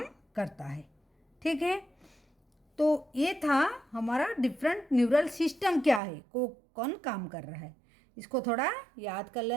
करता है। ठीक है, तो ये था हमारा डिफरेंट न्यूरल सिस्टम क्या है, को कौन काम कर रहा है, इसको थोड़ा याद कर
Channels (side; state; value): left; drops out; at 6.0 s